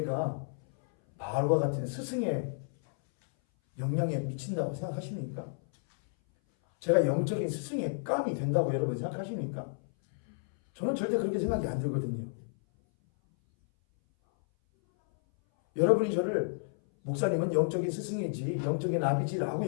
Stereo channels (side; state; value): right; silent; 57 dB below the other